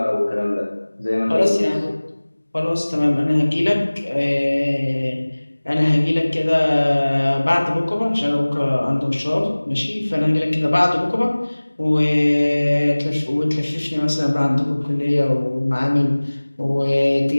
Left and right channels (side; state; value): both; inverted; correlation -1.00